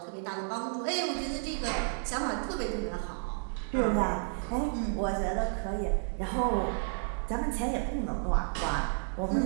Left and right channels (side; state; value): left; silent; digital silence